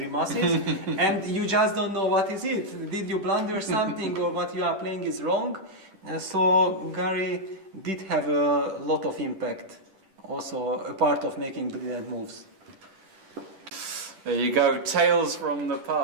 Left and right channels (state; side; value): late; left; 10 ms